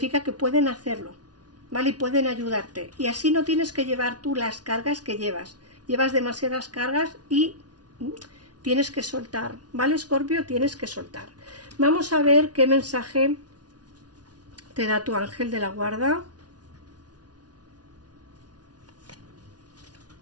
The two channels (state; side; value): late; left; 0.69 ms